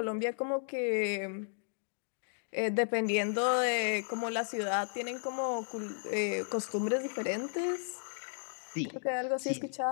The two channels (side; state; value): right; silent; digital silence